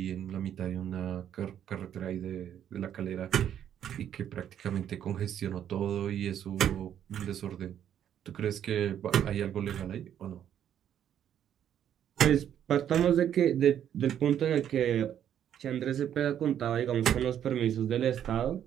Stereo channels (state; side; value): quieter; left; 9.9 dB